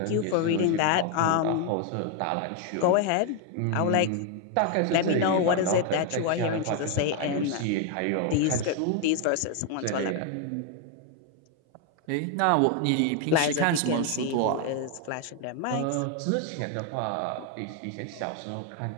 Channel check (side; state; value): both; different; correlation 0.01